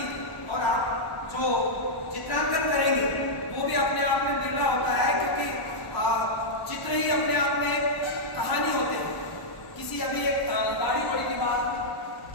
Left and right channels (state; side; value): late; right; 1.1 ms